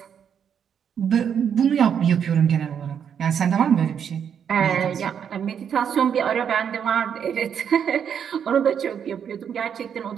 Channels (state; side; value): quieter; left; 8.0 dB